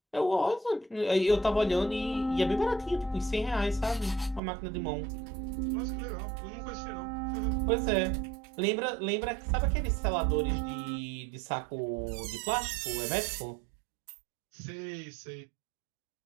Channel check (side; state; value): left; drops out; at 4.4 s